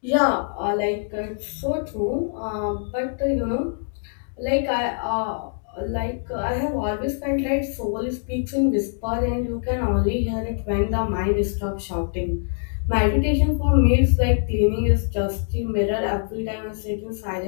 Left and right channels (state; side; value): silent; right; digital silence